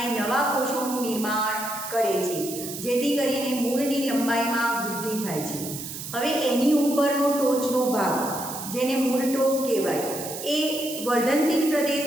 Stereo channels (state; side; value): noise; right; hiss, 9 dB below the sound